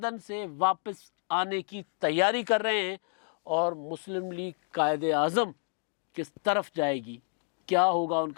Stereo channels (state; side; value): silent; right; 58 dB below the other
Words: سے واپس آنے کی تیاری کر رہے ہیں۔ اور مسلم لیگ قائد اعظم کس طرف جائے گی، کیا ہوگا ان